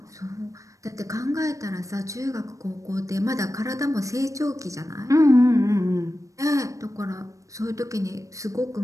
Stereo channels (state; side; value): late; left; 0.16 ms